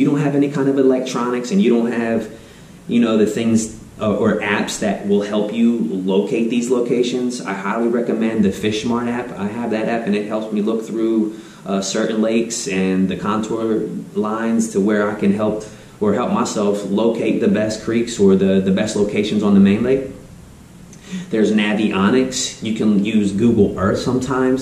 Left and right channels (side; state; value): both; identical; correlation 1.00